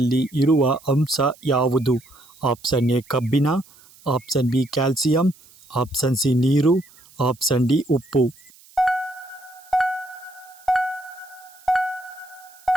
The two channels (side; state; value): right; noise; hiss, 26 dB below the sound